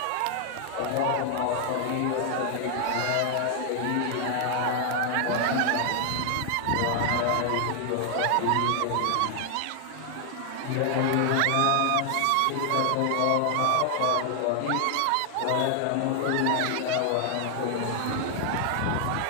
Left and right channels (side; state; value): both; different; correlation 0.00